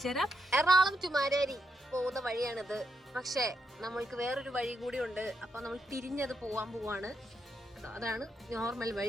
തരാം. എറണാകുളം ടു മാരാരി പോകുന്ന വഴിയാണിത്. പക്ഷേ നമ്മൾക്ക് വേറൊരു വഴി കൂടി ഉണ്ട്. അപ്പൊ നമ്മൾ തിരിഞ്ഞത് പോവാൻ പോവാണ്. അതാണ് നോർമൽ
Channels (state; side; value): normal; both; correlation 0.81